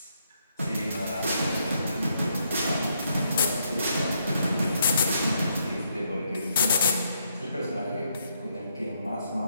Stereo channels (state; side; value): inverted; both; correlation -0.75